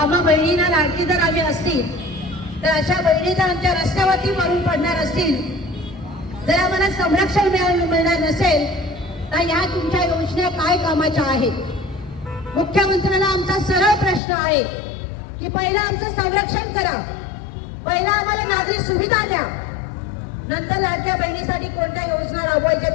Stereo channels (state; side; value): drops out; right; at 14.2 s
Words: बहिणींना लाडकी जर आम्ही असतील तर अशा बहिणी जर आमच्या रस्त्यावरती मरून पडणार असतील, जर आम्हाला संरक्षण मिळणार नसेल तर या तुमच्या योजना काय कामाच्या आहेत? मुख्यमंत्र्यांना आमचा सरळ प्रश्न आहे की पहिला आमचं संरक्षण करा, पहिला आम्हाला नागरी सुविधा द्या, नंतर लाडक्या बहिणीसाठी कोणत्या योजना राबवायच्या